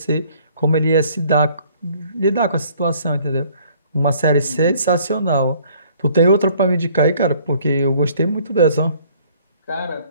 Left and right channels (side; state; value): both; inverted; correlation -0.58